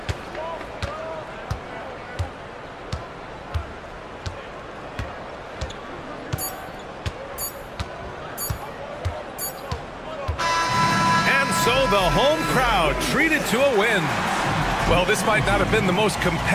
And so the home crowd treated to a win. Well, this might not have been the most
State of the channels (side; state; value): both; identical; correlation 1.00